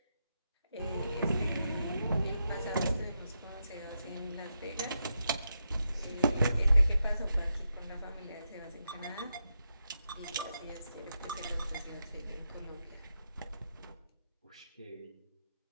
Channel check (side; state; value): both; inverted; correlation -0.85